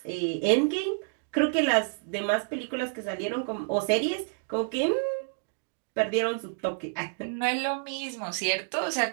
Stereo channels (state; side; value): silent; left; digital silence